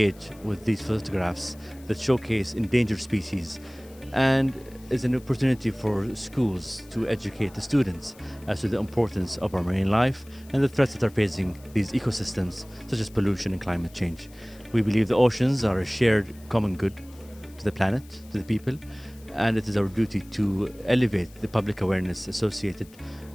with these photographs that showcase endangered species, and is an opportunity for schools to educate the students as to the importance of our marine life and the threats that are facing these ecosystems, such as pollution and climate change. We believe the oceans are a shared common good to the planet, to the people, and it is our duty to elevate the public awareness associated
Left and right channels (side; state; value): left; noise; hiss, 25 dB below the sound